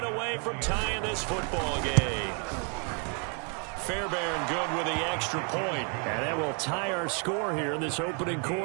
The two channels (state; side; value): quieter; left; 38.6 dB